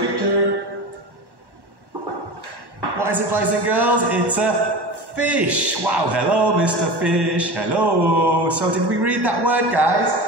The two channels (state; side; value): late; left; 1.1 ms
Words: picture. What is it, boys and girls? It's a fish. Wow, hello, Mr. Fish. Hello. So did we read that word, guys?